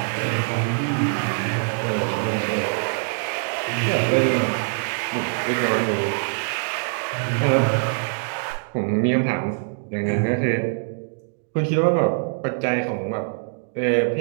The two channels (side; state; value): left; silent; digital silence